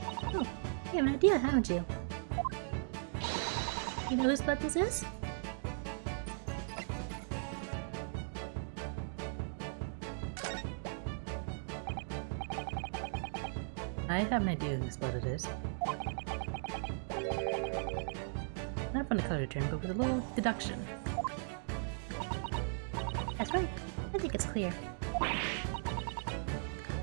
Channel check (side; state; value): left; silent; digital silence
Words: Oh, you have an idea, haven't you? You know whose blood this is? I have an idea whose blood it is. Not from the color term, but with a little deduction. That's right. I think it's clear.